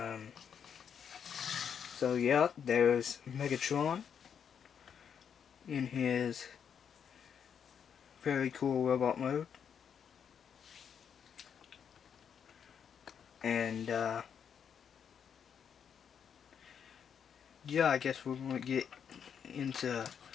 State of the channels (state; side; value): quieter; right; 7.7 dB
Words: So yeah, there's Megatron in his very cool robot mode. And yeah, I guess we're going to get into